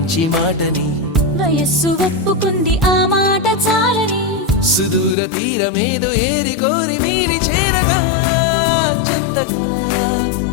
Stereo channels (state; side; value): drops out; right; at 5.2 s